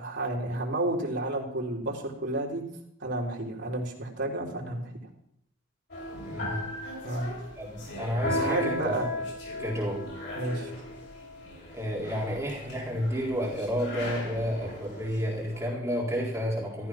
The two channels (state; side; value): normal; both; correlation 0.35